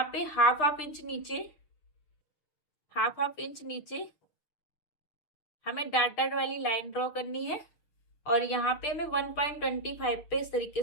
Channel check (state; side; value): late; right; 6.8 ms